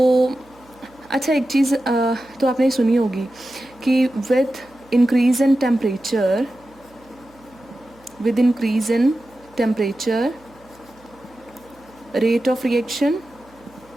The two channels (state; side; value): noise; right; hum, 28 dB below the sound